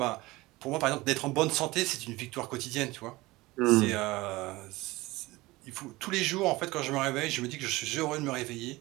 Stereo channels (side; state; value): left; quieter; 20.4 dB